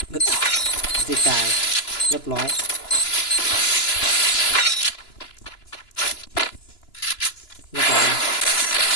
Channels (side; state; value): right; late; 2.9 ms